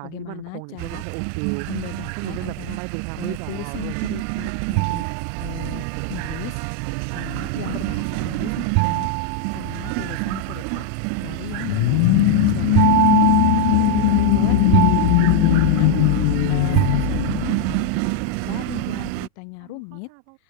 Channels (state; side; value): different; both; correlation 0.00